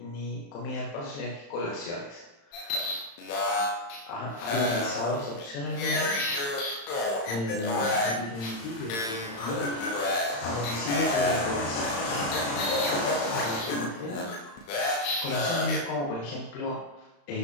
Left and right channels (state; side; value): late; right; 35 ms